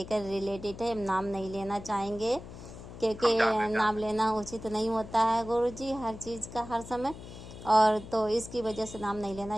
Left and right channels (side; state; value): left; noise; hum, 14 dB below the sound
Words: रिलेटेड है। हम नाम नहीं लेना चाहेंगे, क्योंकि हम जान नाम लेना उचित नहीं होता है गुरुजी हर चीज़ का हर समय, और तो इसकी वजह से नाम नहीं